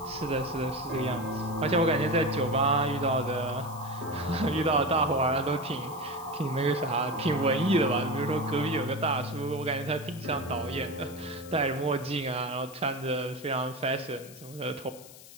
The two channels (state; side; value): noise; left; hiss, 19 dB below the sound